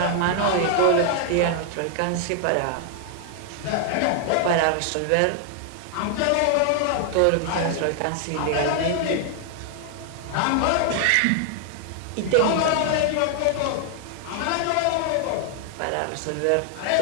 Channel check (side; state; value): both; different; correlation 0.00